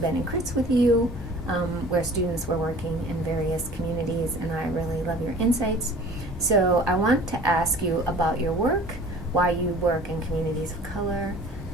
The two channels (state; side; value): normal; both; correlation 0.46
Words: in crits with you, where students were working in various communities, and I really love your insights. So I want to ask you about your work, why you work in communities of color,